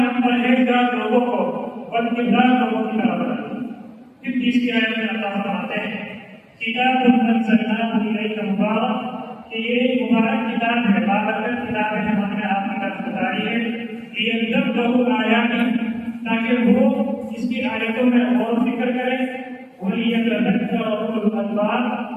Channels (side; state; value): both; identical; correlation 1.00